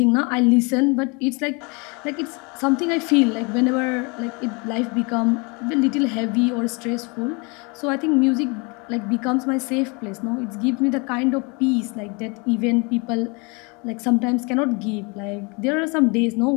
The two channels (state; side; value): quieter; right; 30.2 dB